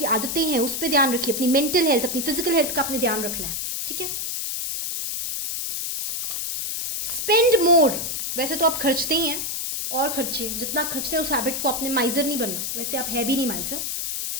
आदतें हैं, उस पर ध्यान रखिए। अपनी मेंटल हेल्थ, अपनी फिजिकल हेल्थ का आपने ध्यान रखना है। ठीक है, स्पेंड मोर। वैसे तो आप खर्चते ही हैं, और खर्चे, जितना खर्चते हैं उस हैबिट को, आपने माइजर नहीं बनना। वैसे आप है भी नहीं माइजर।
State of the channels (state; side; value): noise; left; hiss, 3 dB below the sound